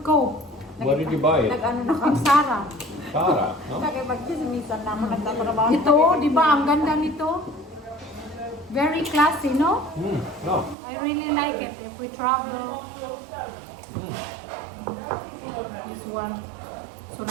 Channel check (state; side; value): drops out; left; at 10.8 s